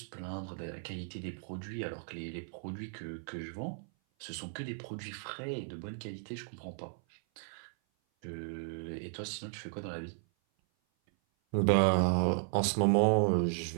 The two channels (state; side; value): silent; left; 54 dB below the other